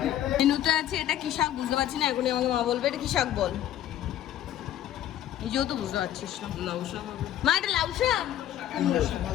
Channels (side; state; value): right; quieter; 12.0 dB